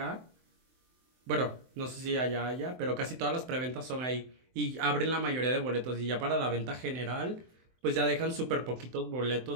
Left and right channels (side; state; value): left; late; 23 ms